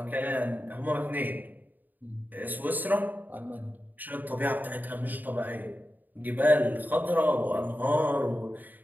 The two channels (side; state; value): left; late; 0.086 ms